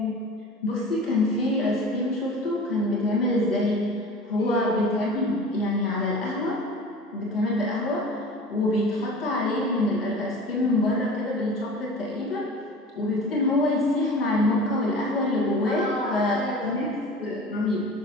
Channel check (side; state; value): both; normal; correlation 0.39